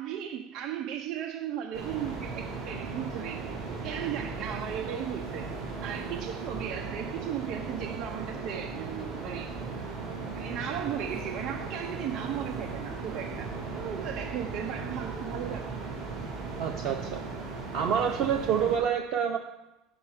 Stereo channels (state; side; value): quieter; left; 6.6 dB